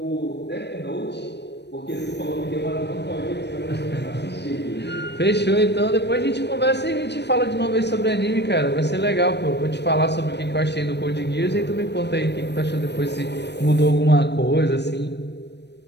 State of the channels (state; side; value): late; right; 0.50 ms